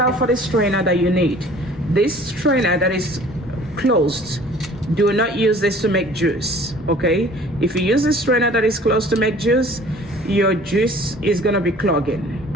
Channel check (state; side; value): normal; both; correlation 0.50